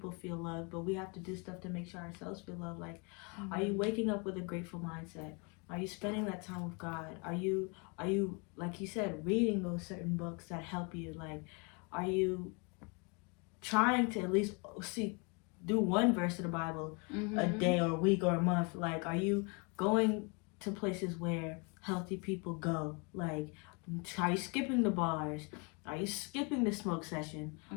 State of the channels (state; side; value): quieter; right; 32.7 dB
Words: feel loved, but we have to do stuff to make sure ourselves feel loved. Like, are you waking up with a grateful mindset? Are you spending that time with God? Are you like you said, reading those certain books that help you? Like, are you trying to at least do one verse of the Bible a day or a week or a month? Like, are you going to places where healthy people go? Like, are you skipping the bars? Are you skipping the smoke session?